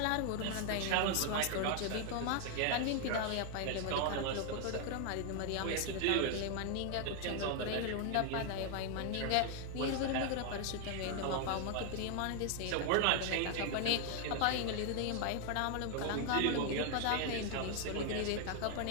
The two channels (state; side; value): different; both; correlation 0.00